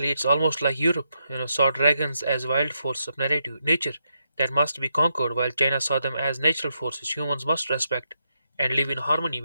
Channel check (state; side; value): inverted; both; correlation -0.82